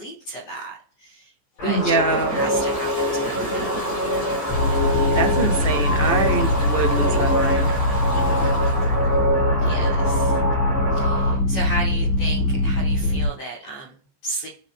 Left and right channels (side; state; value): right; late; 14 ms